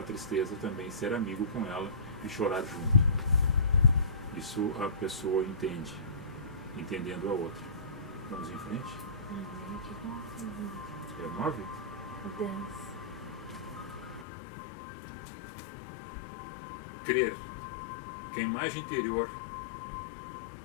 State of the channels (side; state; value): right; drops out; at 14.2 s